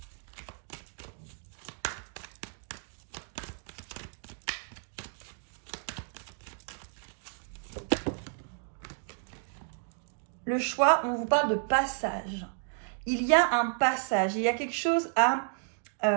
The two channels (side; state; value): left; silent; 56 dB below the other